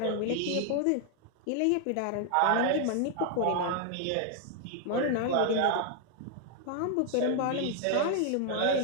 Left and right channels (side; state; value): both; different; correlation 0.00